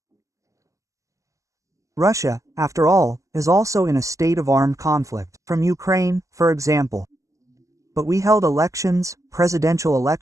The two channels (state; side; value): late; left; 0.15 ms